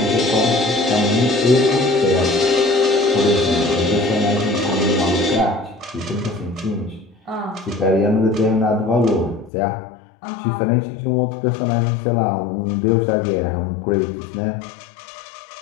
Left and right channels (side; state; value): right; drops out; at 9.5 s